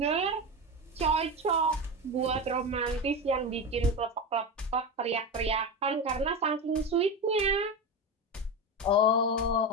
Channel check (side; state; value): both; normal; correlation 0.19